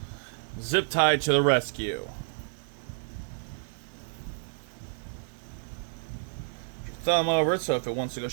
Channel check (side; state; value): left; silent; 58 dB below the other